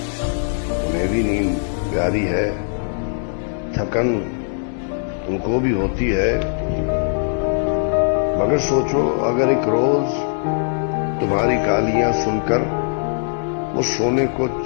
उन्हें भी नींद प्यारी है, थकन उनको भी होती है, मगर सोचो अगर एक रोज तुम्हारी गालियां सुनकर वो सोने को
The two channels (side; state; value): right; silent; digital silence